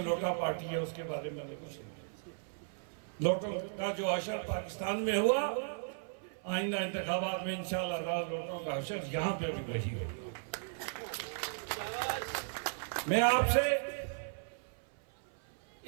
लोटा पार्टी है उसके बारे में कुछ नहीं। लोटों का जो अशर पाकिस्तान में हुआ, आइंदा इंतखाबात में इंशाअल्लाह लोटों का अशर यहाँ पे भी वही होगा। मैं आपसे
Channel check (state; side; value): silent; left; 54 dB below the other